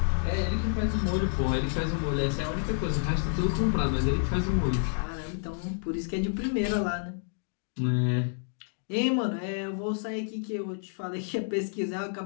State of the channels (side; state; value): right; silent; digital silence